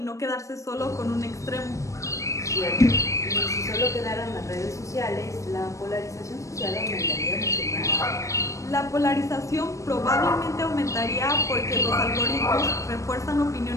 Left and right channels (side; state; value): right; late; 0.15 ms